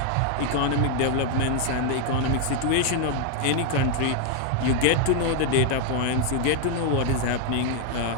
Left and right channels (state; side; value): different; both; correlation 0.00